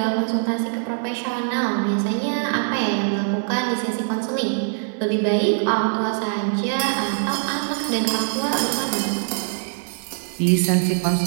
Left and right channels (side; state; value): left; silent; 57 dB below the other